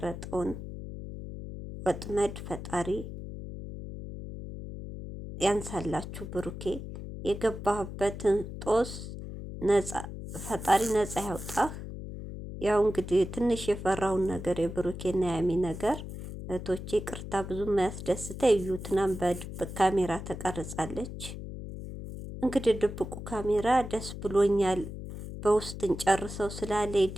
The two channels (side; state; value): left; noise; hum, 9 dB below the sound